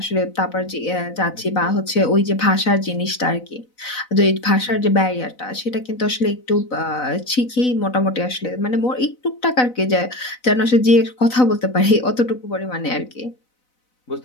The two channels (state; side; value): late; right; 4.0 ms